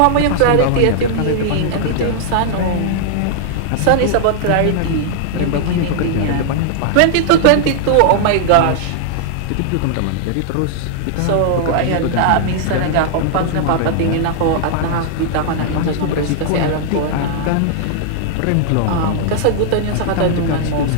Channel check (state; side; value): different; both; correlation -0.01